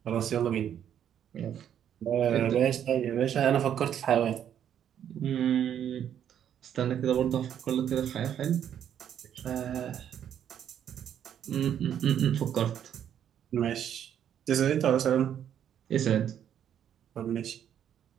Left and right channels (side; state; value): left; quieter; 9.6 dB